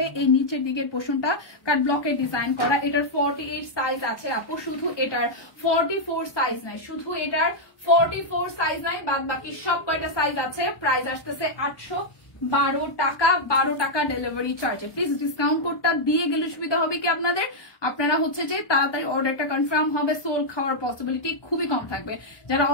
এই নিচের দিকের পোর্শনটা কাট ব্লকের ডিজাইন করা। এটার 48 সাইজ আছে আপু, শুধু এটার 44 সাইজ নাই, শুধু এটার 44 সাইজ নাই, বাদ বাকি সব কয়টা সাইজ আছে। প্রাইস আসতেছে 812 টাকা, 12 টাকা ডেলিভারি চার্জে। প্লিজ ডিসকাউন্ট কোডটা দিয়ে গেলে সুবিধা হবে কি আপনাদের, আপনারা হচ্ছে যে তাড়াতাড়ি অর্ডারটা কনফার্ম হবে। সোল খাওয়ার পসিবিলিটি খুবই কম থাকবে। যারা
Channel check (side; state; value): right; late; 1.2 ms